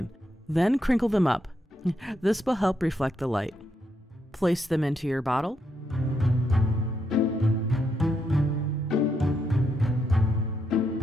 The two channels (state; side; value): normal; both; correlation 0.79